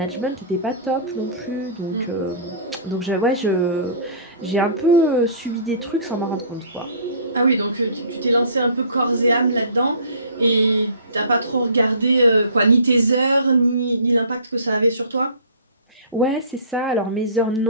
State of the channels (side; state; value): both; inverted; correlation -0.44